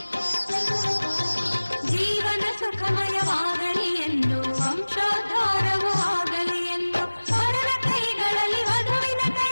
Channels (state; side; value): inverted; both; correlation -1.00